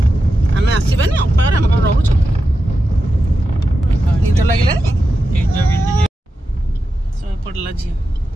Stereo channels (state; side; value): normal; both; correlation 0.90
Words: आम आसबानी अपा घर आम घर रोच निद लगे सब पड़ा झी